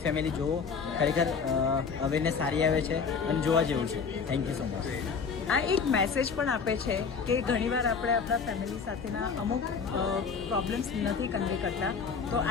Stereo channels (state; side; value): quieter; right; 5.7 dB